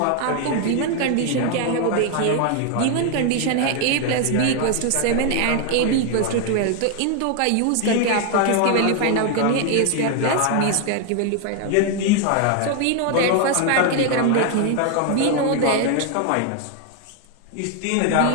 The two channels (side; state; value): both; different; correlation 0.01